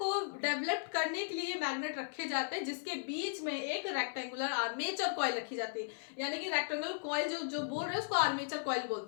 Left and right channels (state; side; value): silent; right; 53 dB below the other